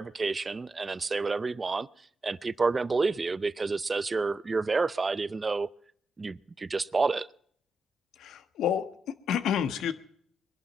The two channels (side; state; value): both; normal; correlation 0.85